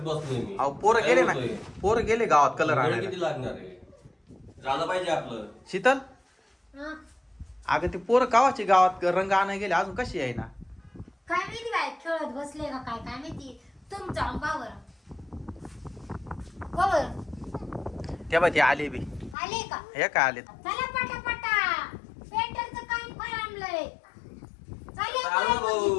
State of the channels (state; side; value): drops out; right; at 19.4 s